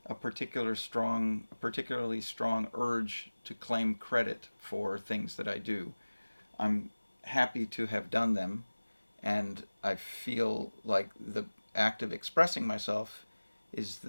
a particularly strong urge to claim credit for things that I do. I'm happy to have done them, and I feel like the act of expressing myself is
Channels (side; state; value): both; inverted; correlation -1.00